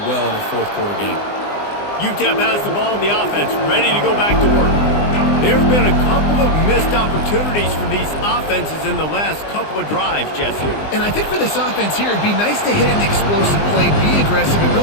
well in a fourth quarter game. UTEP has the ball, the offense ready to go back to work. There have been a couple of missed opportunities for these offenses in the last couple of drives, Jesse. And I think for this offense here, it'd be nice to hit an explosive play, be aggressive, and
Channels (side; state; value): right; late; 20 ms